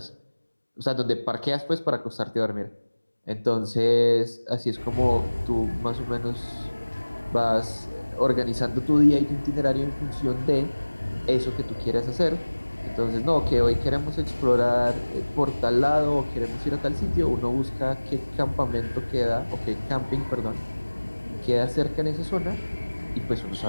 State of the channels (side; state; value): both; inverted; correlation -1.00